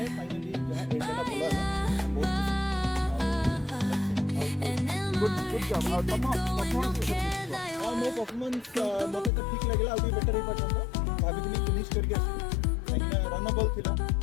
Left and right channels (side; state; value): right; drops out; at 9.3 s